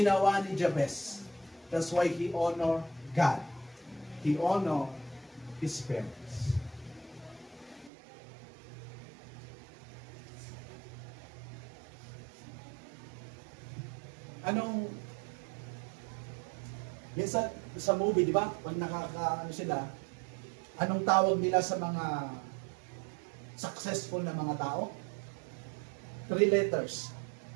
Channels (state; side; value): drops out; left; at 7.9 s